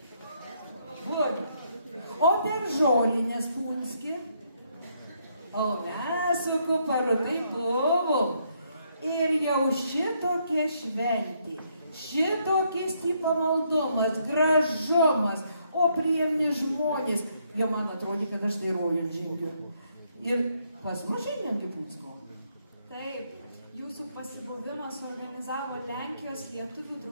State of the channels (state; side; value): inverted; both; correlation -0.73